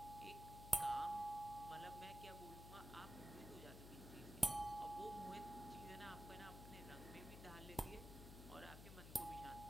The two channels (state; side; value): noise; left; hum, 9 dB below the sound